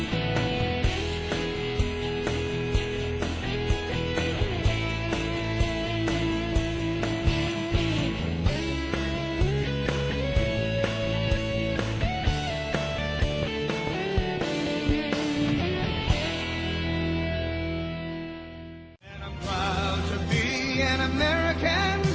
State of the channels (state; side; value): identical; both; correlation 1.00